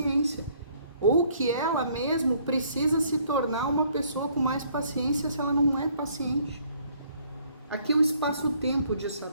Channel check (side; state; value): both; inverted; correlation -0.63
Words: ou que ela mesmo precisa se tornar uma pessoa com mais paciência se ela não é paciente. Aqui é o espaço-tempo de